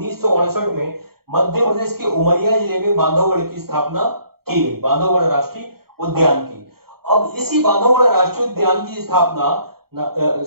में मध्य प्रदेश के उमरिया जिले में बांधवगढ़ की स्थापना की गई, बांधवगढ़ राष्ट्रीय उद्यान की। अब इसी बांधवगढ़ राष्ट्रीय उद्यान की स्थापना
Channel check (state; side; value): late; left; 0.95 ms